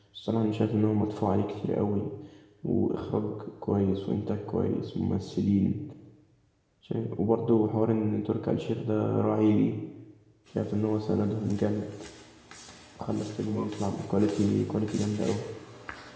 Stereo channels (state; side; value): identical; both; correlation 1.00